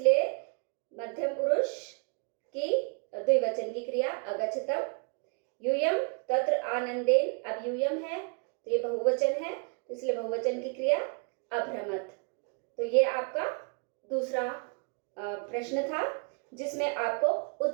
मध्यम पुरुष की द्विवचन की क्रिया अगच्छतम। यूयम तत्र आनंदेन। अब यूयम है तो ये बहुवचन है, तो इसलिए बहुवचन की क्रिया अभ्रमत। तो ये आपका दूसरा प्रश्न था, जिसमें आपको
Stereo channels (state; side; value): quieter; left; 39.3 dB